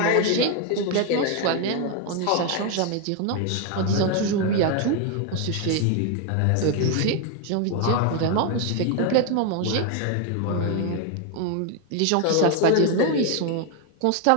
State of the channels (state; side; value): different; both; correlation 0.01